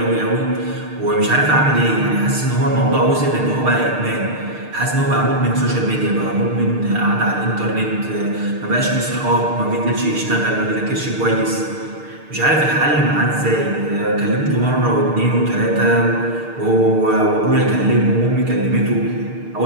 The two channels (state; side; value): late; left; 6.6 ms